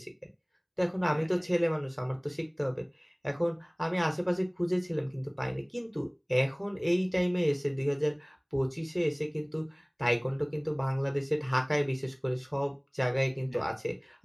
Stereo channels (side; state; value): both; identical; correlation 1.00